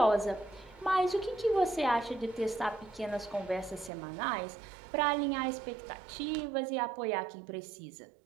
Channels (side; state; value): left; drops out; at 3.9 s